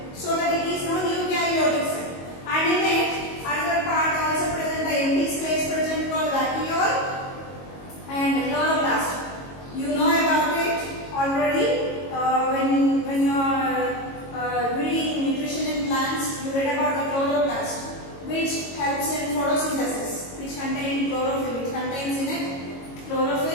so that it is known eukaryotic cell. And in it, another part also present, the empty space present called vacuole and chloroplast. You know about it already when you are reading nutrition in plants. You read about the chloroplast, which helps in photosynthesis, which contains chlorophyll, which contains in it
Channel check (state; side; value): late; right; 22 ms